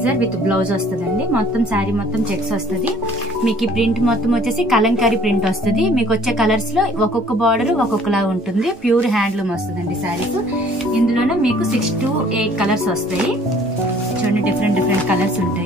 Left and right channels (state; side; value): normal; both; correlation 0.56